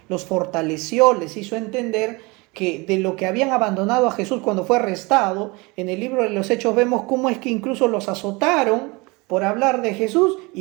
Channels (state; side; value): quieter; left; 25.7 dB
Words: los fortaleció, les hizo entender que de lo que habían abandonado a Jesús cuando fue arrestado? En el libro de los Hechos vemos cómo es que incluso los azotaron por hablar de Jesús